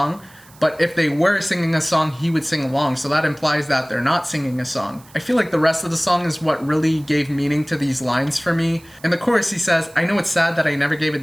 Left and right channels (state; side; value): noise; right; hiss, 26 dB below the sound